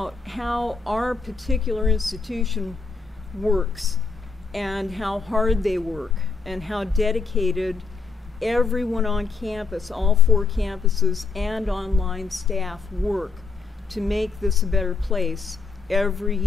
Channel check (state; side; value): quieter; right; 4.8 dB